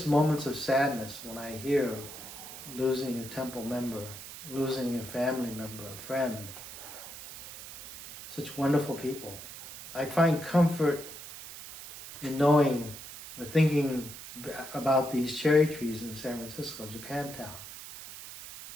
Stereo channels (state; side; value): noise; right; hiss, 13 dB below the sound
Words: moments of sadness, when I hear losing a temple member, losing a family member, a friend, such wonderful people, I find comfort in knowing or thinking about these cherry trees in San Francisco, Japantown,